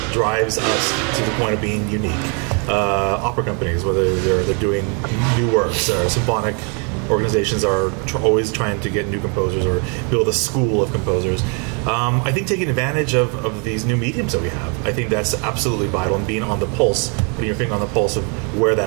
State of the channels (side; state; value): left; quieter; 36.3 dB